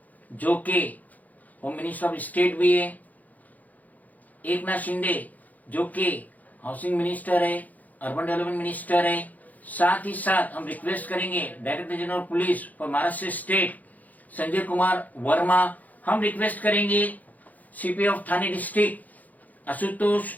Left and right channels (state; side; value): late; right; 0.080 ms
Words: जो कि होम मिनिस्टर ऑफ स्टेट भी है, एकनाथ शिंदे जो कि हाउसिंग मिनिस्टर है, अर्बन डेवलपमेंट मिनिस्टर है। साथ ही साथ हम रिक्वेस्ट करेंगे director general police for Maharashtra state Sanjay Kumar Varma, हम रिक्वेस्ट करेंगे CP of Thane district Ashutosh